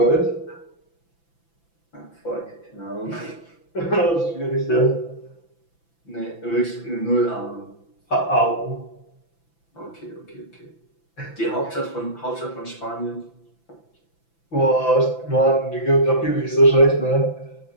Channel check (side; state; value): right; late; 5.9 ms